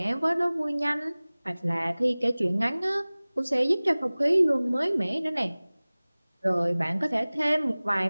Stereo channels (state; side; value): inverted; both; correlation -0.99